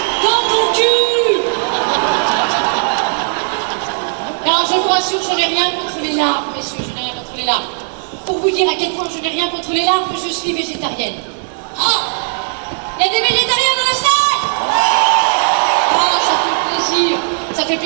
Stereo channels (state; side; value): silent; left; digital silence